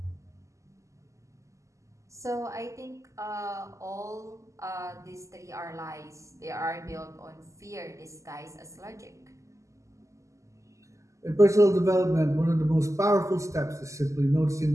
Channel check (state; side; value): late; left; 0.15 ms